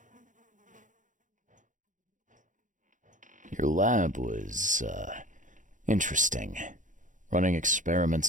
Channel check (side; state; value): left; late; 0.37 ms